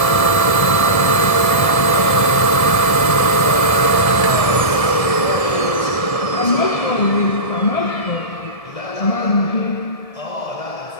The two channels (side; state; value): right; late; 1.7 ms